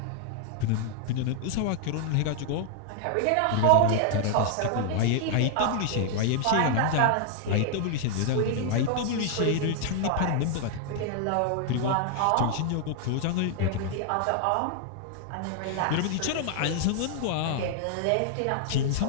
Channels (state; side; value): different; both; correlation 0.00